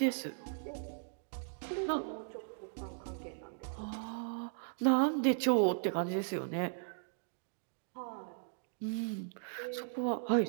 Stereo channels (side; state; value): left; silent; digital silence